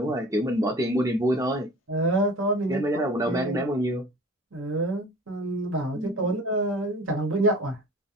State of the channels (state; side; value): normal; both; correlation 0.43